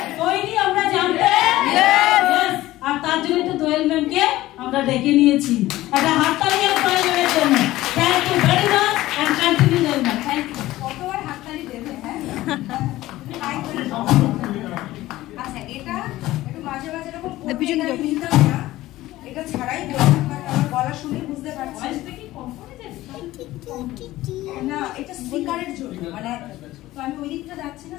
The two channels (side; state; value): right; quieter; 16.5 dB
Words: জানতে, আর তার জন্য তো দোয়েল ম্যামকে আমরা ডেকে নিয়েছি। একটা হাততালি প্রয়োজনের জন্য। Thank you very much and continue Doyel ma'am. Thank you. কতবার হাততালি দেবে? হ্যাঁ আচ্ছা, এটা একটু মাঝে মাঝে এরকম নিতাম না, এটা ছাড়াই বললাম, কারণ আমার গলা শুনে বুঝতে পারছি না এটা স্পিকারের জন্য, মানে তো আমি ওই দিকটা যাচ্ছি না,